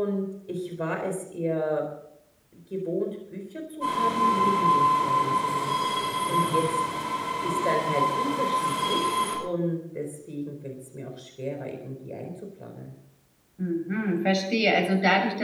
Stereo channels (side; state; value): both; identical; correlation 1.00